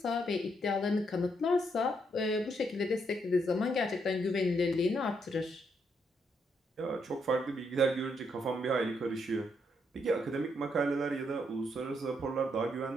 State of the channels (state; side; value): normal; both; correlation 0.76